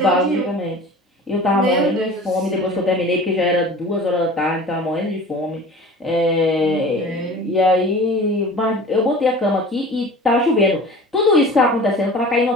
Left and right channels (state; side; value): normal; both; correlation 0.40